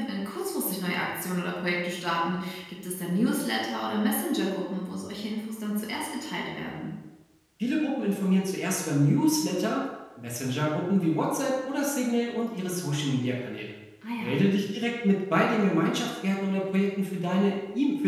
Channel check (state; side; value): identical; both; correlation 1.00